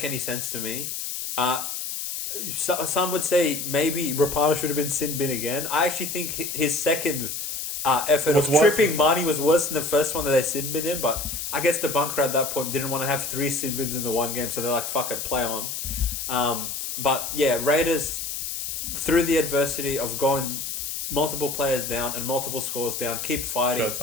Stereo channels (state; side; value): noise; left; hiss, 5 dB below the sound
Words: any sense to me. Some would say maybe Rapana should have been sin bin again. I actually think his second effort of tripping Marnie was worse than the first one that they sin bin him, but I guess the bunker at that point didn't want to have 3 sin bins in the one game, so they're like, fuck it, play on. But yeah, Raiders, through the adversity of going multiple players down and multiple scores down, keep fighting,